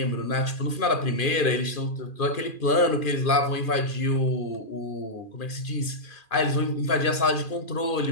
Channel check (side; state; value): right; late; 2.4 ms